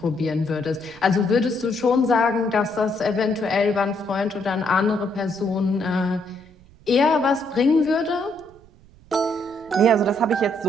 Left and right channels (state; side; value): noise; right; rumble, 26 dB below the sound